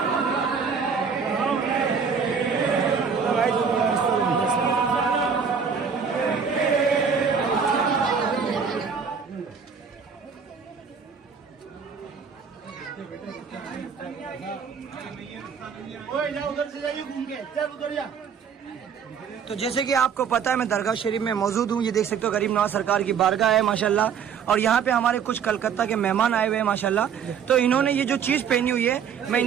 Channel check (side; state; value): left; quieter; 6.7 dB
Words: तो जैसे कि आपको पता है मैं दरगाह शरीफ में मौजूद हूँ। ये देख सकते हो गरीब नवाज सरकार की बारगाह है माशाल्लाह, और यहाँ पे हमारे कुछ कलकत्ता के मेहमान आए हुए हैं माशाल्लाह। तो इन्होंने ये जो चीज पहनी हुई है मैं